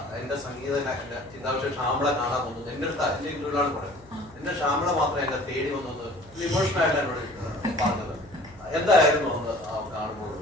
എന്റെ സംഗീത ചിന്താവിഷയം ഷാമള കാണാൻ പോകുന്നത് എന്റെ അടുത്ത് എന്റെ ഇന്റർവ്യൂലാണ് പറയുന്നത്. എന്റെ ഷാമള മാത്രം എന്നെ തേടി വന്നത് ഇമോഷണൽ എന്നോട് പറഞ്ഞത് എന്തായിരുന്നു കാണുമ്പോൾ?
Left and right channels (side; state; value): left; noise; hum, 25 dB below the sound